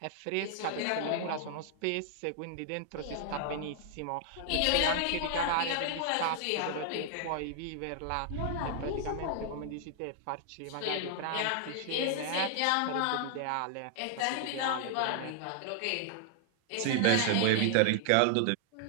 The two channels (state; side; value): different; both; correlation 0.00